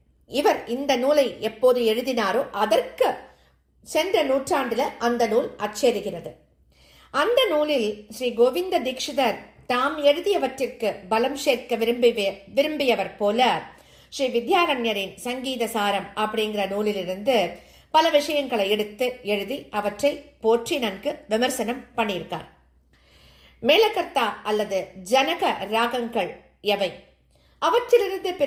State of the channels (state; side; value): identical; both; correlation 1.00